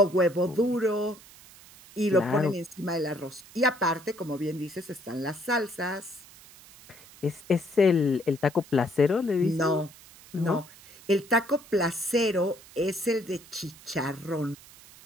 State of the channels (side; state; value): right; noise; hiss, 21 dB below the sound